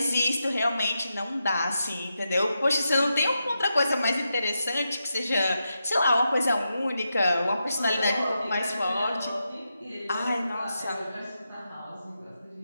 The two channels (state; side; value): inverted; both; correlation -0.87